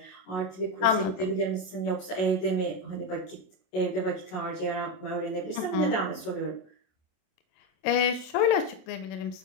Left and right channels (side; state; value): right; late; 27 ms